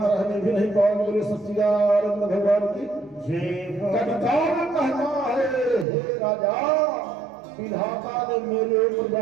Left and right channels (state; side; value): drops out; left; at 5.9 s